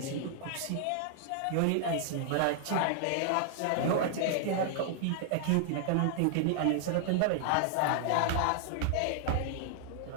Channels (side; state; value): both; different; correlation -0.01